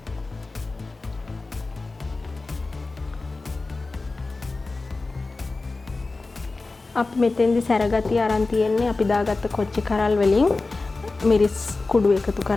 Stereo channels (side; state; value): right; quieter; 3.5 dB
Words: අපි මෙතෙන්දි සැරගතිය අරන් තියෙන්නේ අපි දාගත්ත කොච්චි කරල් වලින් මිරිස් කුඩු එකතු